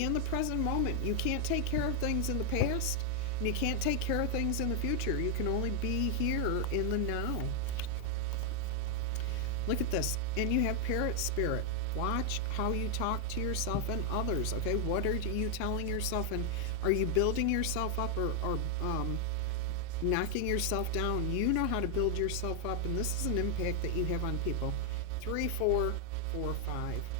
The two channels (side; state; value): both; different; correlation 0.00